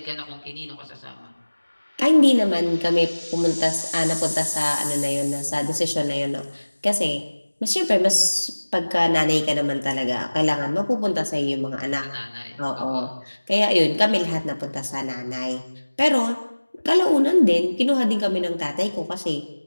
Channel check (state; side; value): inverted; both; correlation -1.00